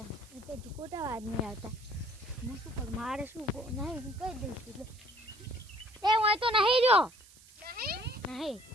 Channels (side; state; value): right; noise; hiss, 23 dB below the sound